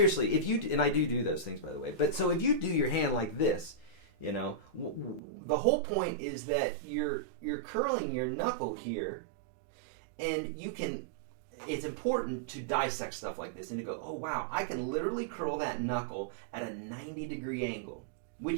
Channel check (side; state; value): left; drops out; at 5.2 s